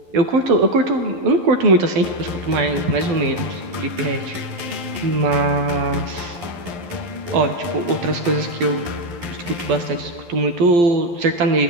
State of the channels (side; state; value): left; late; 12 ms